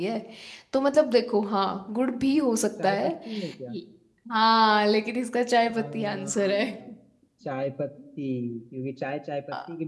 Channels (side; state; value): both; identical; correlation 1.00